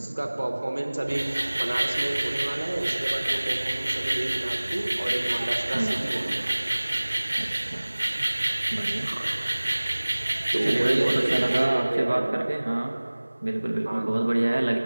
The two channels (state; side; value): inverted; both; correlation -1.00